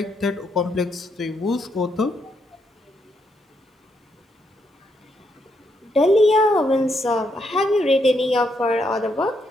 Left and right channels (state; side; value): normal; both; correlation 0.77